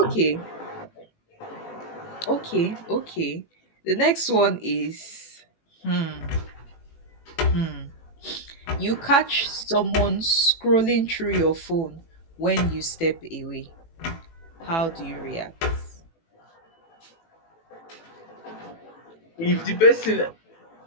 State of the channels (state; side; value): late; right; 18 ms